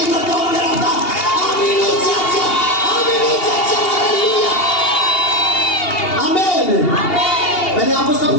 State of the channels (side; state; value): right; late; 2.8 ms